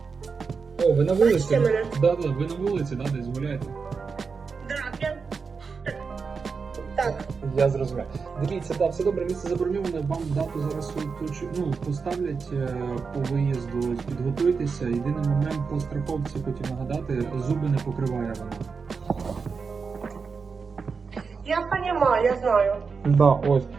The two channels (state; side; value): quieter; left; 5.2 dB